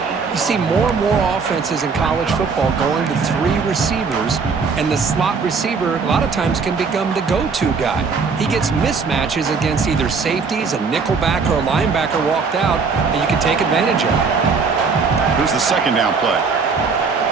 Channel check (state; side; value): quieter; left; 5.0 dB